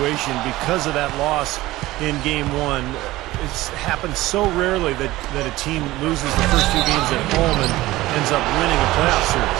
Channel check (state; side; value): quieter; left; 17.6 dB